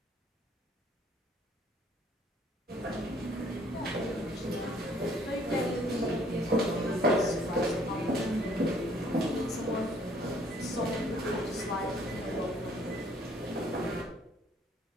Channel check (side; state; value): both; normal; correlation 0.61